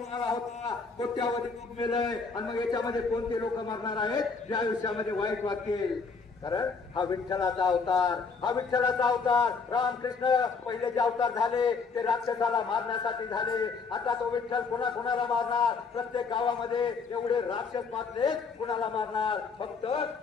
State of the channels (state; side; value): quieter; right; 4.9 dB